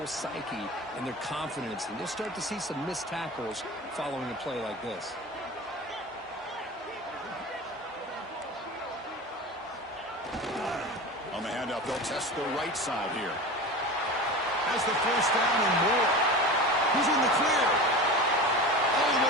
psyche and their confidence. And you'll start to see some missed tackles following a play like this. On the handoff, they'll test the right side here. Has the first down and more. He's in the clear. All the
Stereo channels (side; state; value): both; normal; correlation 0.31